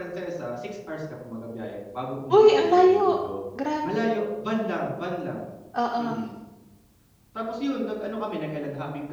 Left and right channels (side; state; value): both; identical; correlation 1.00